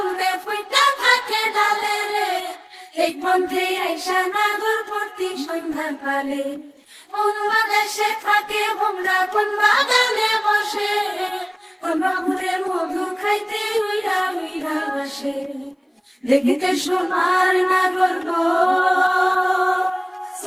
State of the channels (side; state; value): both; identical; correlation 1.00